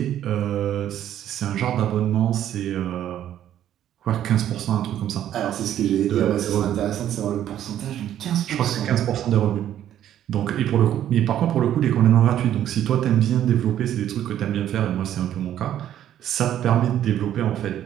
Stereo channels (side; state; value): left; quieter; 11.2 dB